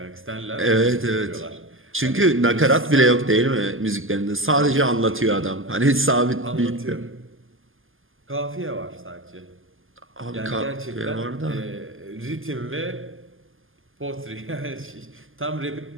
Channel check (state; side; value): late; left; 0.59 ms